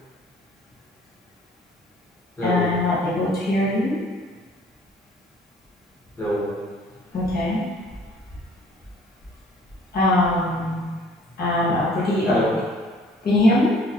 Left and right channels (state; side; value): normal; both; correlation 0.55